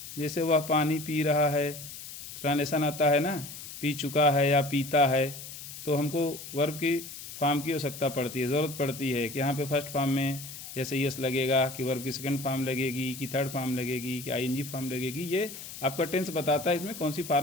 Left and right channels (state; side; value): noise; left; hiss, 12 dB below the sound